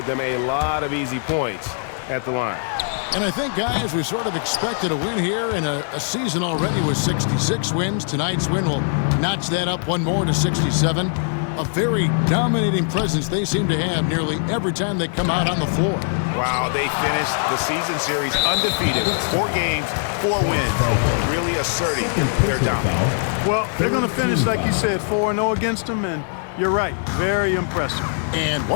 them a lot of easy points at the line. And I think, guys, we sort of expected a win here in a season already with 66 wins. Tonight's win will notch that up 1 more to 67. A very dominating presence they seem to have nearly every time they come out on the floor. Wow, they finished the season series undefeated. 4 games, 4 wins, really asserting their dominance. Well, they're going to finish, like you said, 4-0 against them, and you're right, very impressive. And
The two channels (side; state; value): right; silent; digital silence